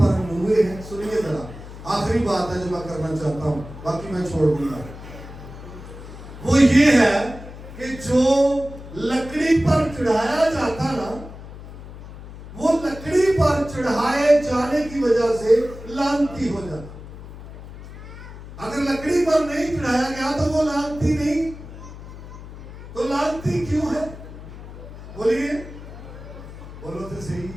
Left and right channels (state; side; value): noise; left; hum, 14 dB below the sound